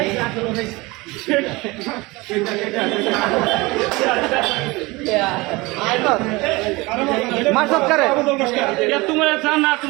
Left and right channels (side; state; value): left; quieter; 23.0 dB